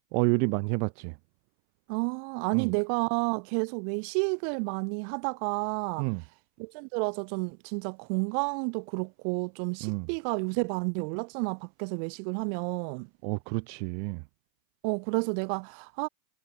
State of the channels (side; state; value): left; silent; 57 dB below the other